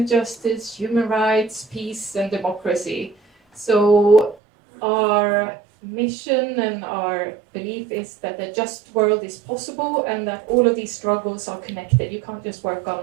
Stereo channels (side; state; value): left; drops out; at 4.4 s